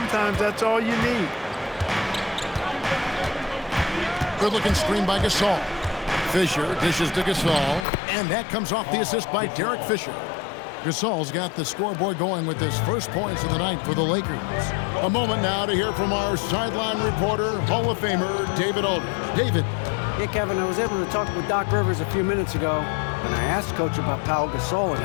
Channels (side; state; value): right; drops out; at 7.9 s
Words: that's all you need. Good-looking screen by Gasol. Fisher dishes to Gasol, and that comes off the assist by Derek Fisher. Gasol's got the scoreboard going with his first points of the night for the Lakers. A moment now to hear from our sideline reporter, Hall of Famer David Aldridge. David. Hey, Kevin, I was able to talk with Doc Rivers a few minutes ago, and I asked Coach about Pau Gasol and